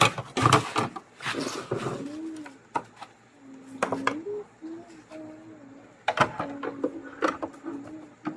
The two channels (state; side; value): identical; both; correlation 1.00